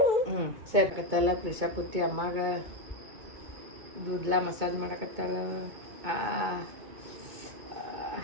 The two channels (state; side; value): late; left; 2.2 ms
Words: ಸೇರ್ಕತ್ತಲ್ಲ ಪ್ರಿಷಾ ಕುತ್ತಿ ಅಮ್ಮಾಗ ಕೂದಲ ಮಸಾಜ್ ಮಾಡಕತ್ತಾಳ.